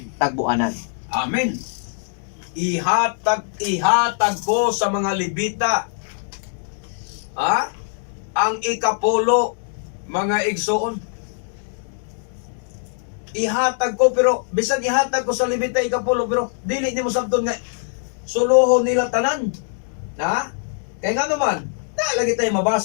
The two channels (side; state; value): right; silent; digital silence